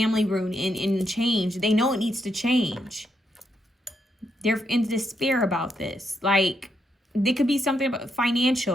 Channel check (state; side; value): normal; both; correlation 0.79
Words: root and change. They know it needs to change. They're in despair about this. Like, it could be something about